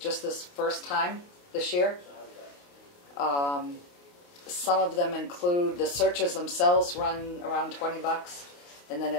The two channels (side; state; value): right; late; 28 ms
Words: first time this year. Some of them include the searches themselves run around $20, and then